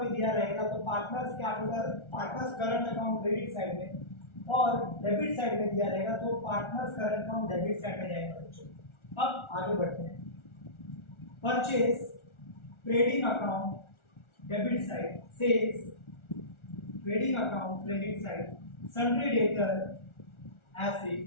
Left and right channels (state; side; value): late; right; 1.4 ms